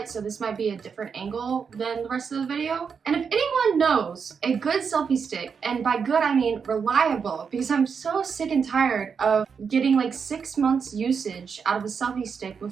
So this might be a different angle than the rest of the video. And if anyone knows a good selfie stick, and by good I mean reliable, because I'm so sick and tired of getting like 6 months usage out of a selfie stick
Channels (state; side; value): quieter; left; 6.2 dB